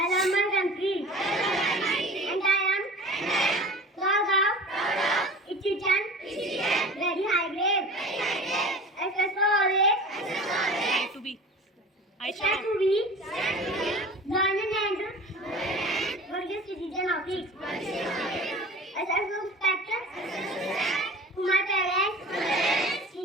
love my country. And I am proud of its citizen. Very high grade. SS always. To be. Stand to be. Learning and worthy citizen of it. SS respect to my parents,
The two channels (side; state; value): both; normal; correlation 0.38